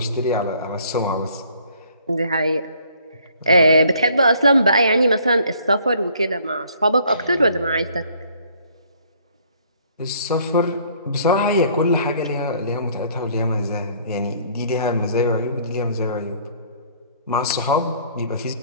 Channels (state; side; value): inverted; both; correlation -0.60